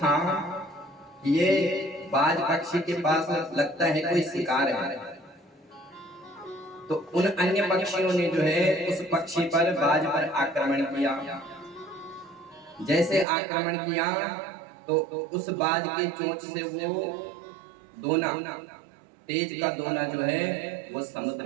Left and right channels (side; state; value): left; drops out; at 13.2 s